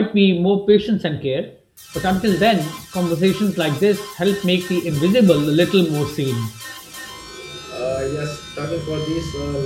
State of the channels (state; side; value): identical; both; correlation 1.00